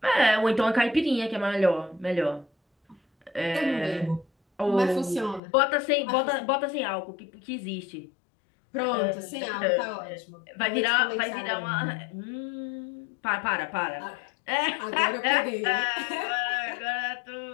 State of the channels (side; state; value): right; drops out; at 5.4 s